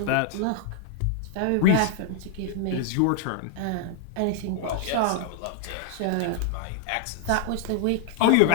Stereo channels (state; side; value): different; both; correlation 0.00